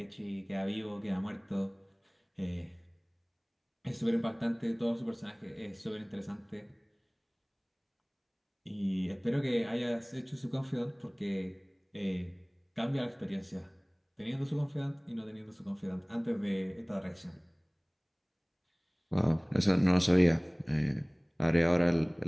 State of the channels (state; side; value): identical; both; correlation 1.00